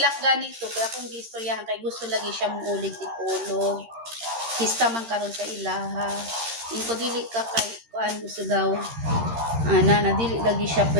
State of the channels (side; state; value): left; late; 13 ms